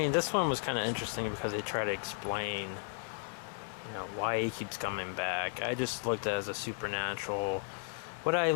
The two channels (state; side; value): silent; right; 55 dB below the other